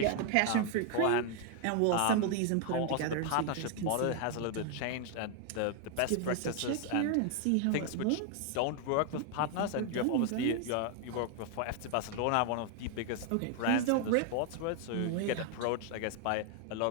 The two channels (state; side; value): different; both; correlation 0.00